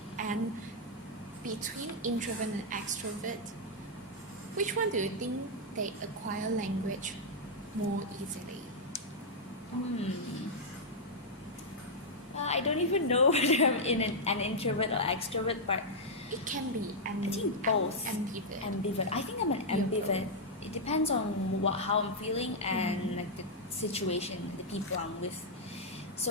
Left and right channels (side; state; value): both; normal; correlation -0.05